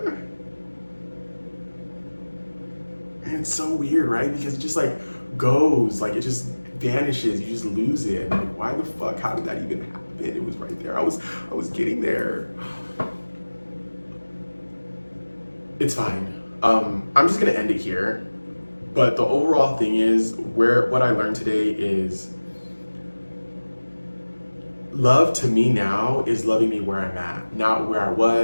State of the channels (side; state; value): both; inverted; correlation -1.00